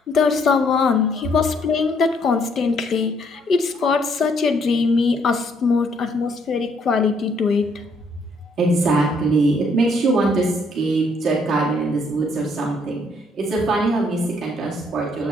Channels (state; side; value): normal; both; correlation 0.68